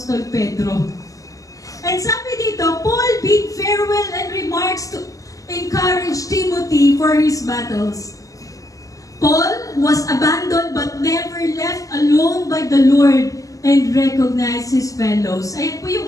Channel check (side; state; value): right; late; 0.16 ms